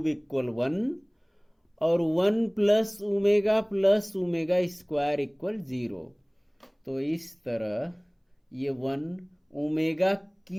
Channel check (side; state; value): both; identical; correlation 1.00